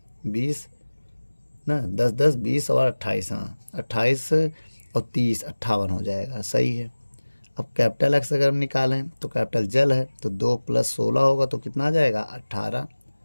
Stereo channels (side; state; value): both; inverted; correlation -1.00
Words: 20 ना, 10 10 20 और 28, हाँ 28 और 30 58 हो जाएगा, सही है। अब कैपिटल एक्स अगर हम निकालें तो कैपिटल जल है, तो 2 + 16 होगा, तो कितना आ जाएगा 18।